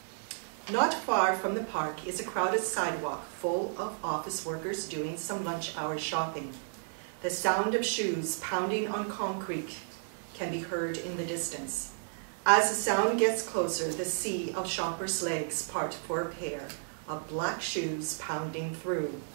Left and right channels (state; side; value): silent; left; digital silence